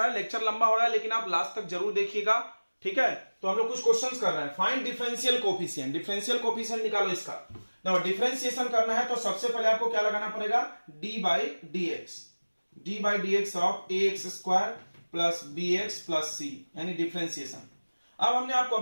है, लेक्चर लंबा हो रहा है, लेकिन आप लास्ट तक जरूर देखिएगा, ठीक है। तो हम लोग कुछ क्वेश्चंस कर रहे हैं, find differential coefficient, differential coefficient निकालो इसका। देखो डिफरेंशिएशन करना है तो सबसे पहले आपको क्या लगाना पड़ेगा, d by d x, d by d x of a x square plus b x plus c, यानी डिफरेंशिएशन। अब हमने आपको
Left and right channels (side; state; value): both; inverted; correlation -1.00